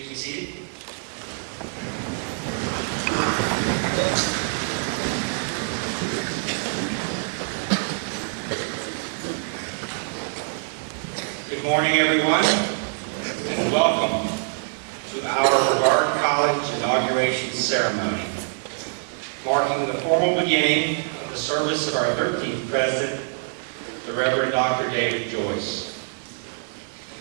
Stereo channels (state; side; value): silent; left; 62 dB below the other